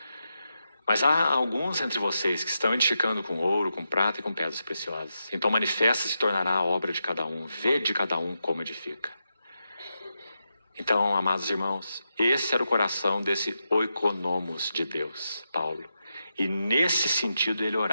Mas há alguns entre vocês que estão edificando com ouro, com prata e com pedras preciosas. Então manifesta se tornará a obra de cada um. Vê de cada um como edifica. Então, amados irmãos, esse era o coração desse oikonomos de Deus, Paulo. E nesse sentido ele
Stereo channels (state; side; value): inverted; both; correlation -0.87